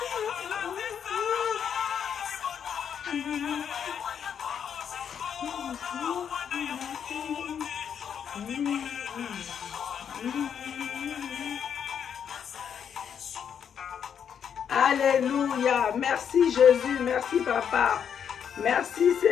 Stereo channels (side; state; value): right; quieter; 8.0 dB